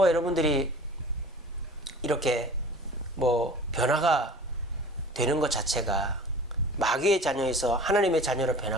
여러분들이 이렇게 뭐 변화가 되는 것 자체가 마귀의 자녀에서 하나님의 자녀로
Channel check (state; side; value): normal; both; correlation 0.42